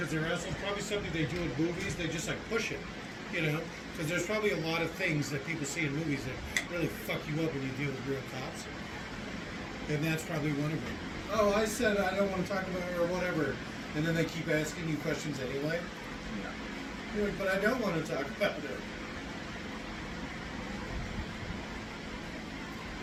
they're assholes. Probably something they do in movies. They just like push it, you know? Because there's probably a lot of things that people see in movies that really fuck you up when you deal with real cops. And that's probably one of them. Oh, I said I don't want to talk about it or whatever. And then they keep asking you questions anyway. Yeah. You're like, but I don't want to talk about it.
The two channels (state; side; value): identical; both; correlation 1.00